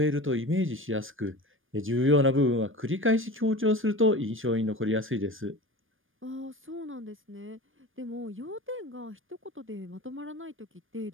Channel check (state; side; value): late; left; 0.59 ms